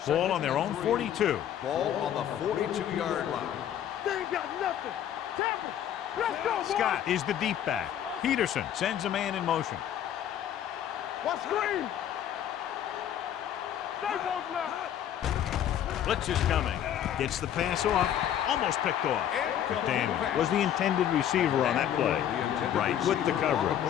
Ball on their own 42. Ball on the 42-yard line. They ain't got nothing. Tampa, let's go, boys. Scott is the deep back. Peterson sends a man in motion. What screen? Stay both left. Blitz is coming. Gets the pass off. Almost picked off. But Daniel was the intended receiver on that play. Right with the coverage.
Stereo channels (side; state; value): right; quieter; 10.3 dB